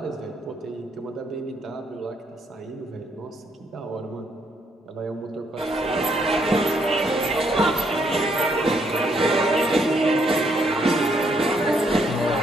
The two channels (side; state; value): both; normal; correlation 0.72